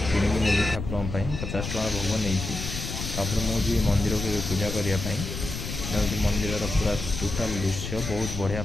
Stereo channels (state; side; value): noise; left; rumble, 6 dB below the sound